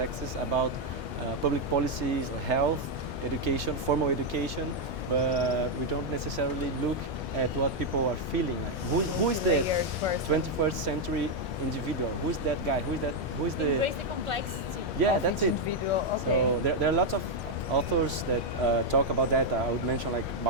about public policies, or health, education, formal education, but we don't necessarily look at what people are feeling. Like who is the 21st century individual? Who is that guy? Who is the? Embrace the complexity. Yeah, that's it. Okay. So there are lots of authors that talk about that. I would mention like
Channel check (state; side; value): normal; both; correlation 0.01